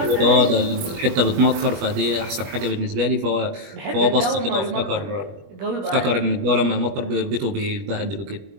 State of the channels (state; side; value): late; left; 21 ms